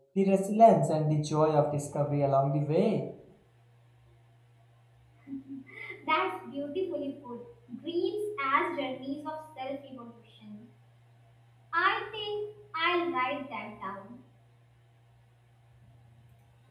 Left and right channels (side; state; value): both; identical; correlation 1.00